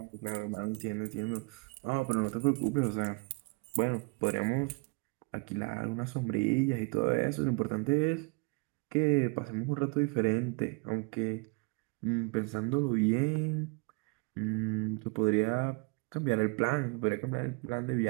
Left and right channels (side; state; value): left; quieter; 30.0 dB